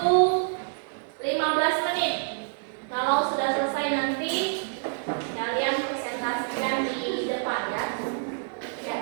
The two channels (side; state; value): left; silent; 60 dB below the other